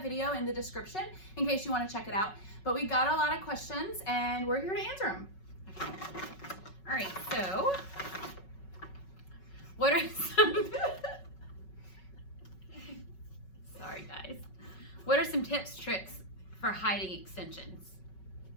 video in the description in case you want to check it out. But we got a lot of questions, and we're here to answer them. All right, so what are some sorry guys, what are some tips, tricks for hiding extensions?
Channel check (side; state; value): right; late; 5.4 ms